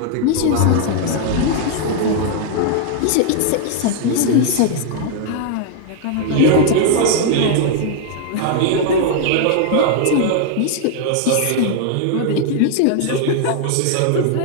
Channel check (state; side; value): different; both; correlation -0.01